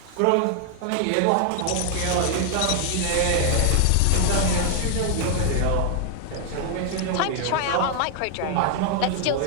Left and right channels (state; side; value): different; both; correlation 0.00